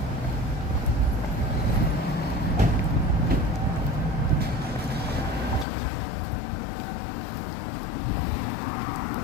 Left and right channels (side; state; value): right; drops out; at 5.7 s